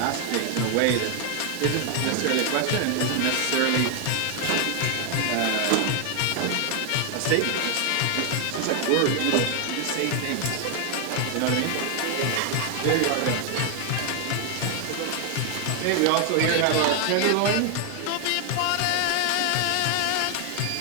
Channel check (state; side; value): different; both; correlation 0.00